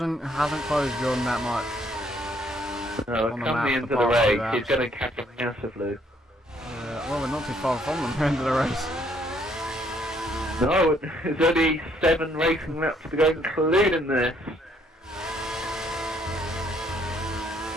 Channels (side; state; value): both; normal; correlation 0.67